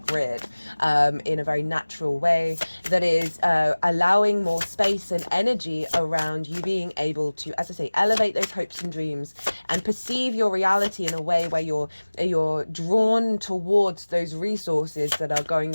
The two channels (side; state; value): both; inverted; correlation -1.00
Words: in a very natural way that is allowing more space and energy around you being able to, as I say, elevate those hopes and dreams and perceive your reality in a way where you're drawn towards those resources that are going